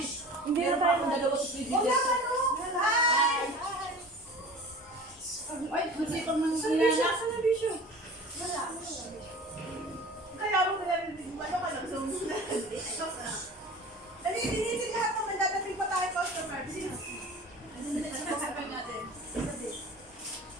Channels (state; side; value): normal; both; correlation 0.39